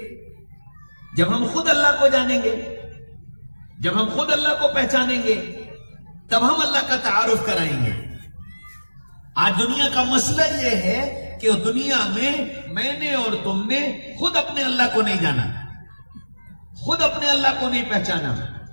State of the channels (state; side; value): inverted; both; correlation -1.00